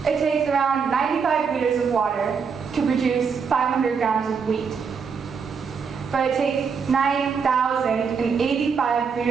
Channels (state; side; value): quieter; left; 6.0 dB